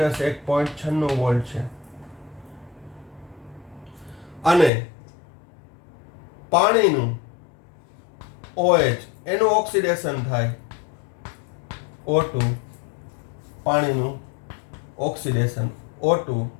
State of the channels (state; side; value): drops out; right; at 4.7 s